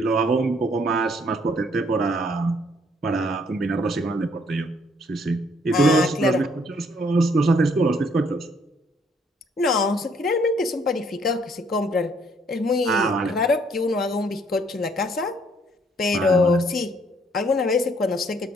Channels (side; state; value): both; normal; correlation 0.66